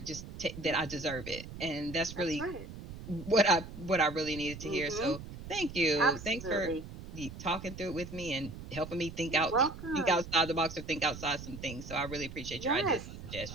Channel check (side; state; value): right; noise; rumble, 12 dB below the sound